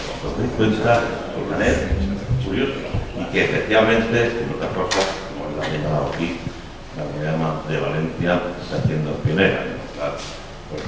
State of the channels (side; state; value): both; identical; correlation 1.00